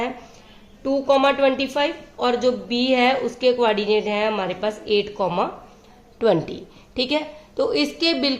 2,25 और जो बी है उसके कोऑर्डिनेट है हमारे पास 8,20। ठीक है, तो इसके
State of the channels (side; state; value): both; identical; correlation 1.00